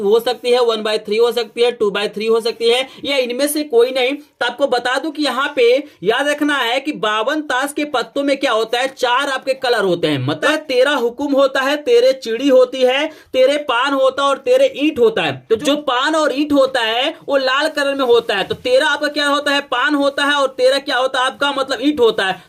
हो सकती है, 1/3 हो सकती है, 2/3 हो सकती है, या इनमें से कोई नहीं। तो आपको बता दूं कि यहाँ पे याद रखना है कि 52 ताश के पत्तों में क्या होता है, 4 आपके कलर होते हैं। मतलब 13 हुकुम होता है, 13 चिड़ी होती है, 13 पान होता है और 13 ईंट होता है। तो जो पान और ईंट होता है वो लाल कलर में होता है। तो 13 आपका क्या होता है, पान होता है, और 13 क्या होता है आपका, मतलब ईंट होता है।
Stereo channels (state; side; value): identical; both; correlation 1.00